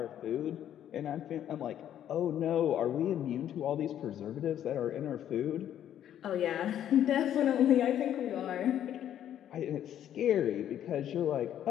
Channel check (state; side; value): quieter; right; 10.6 dB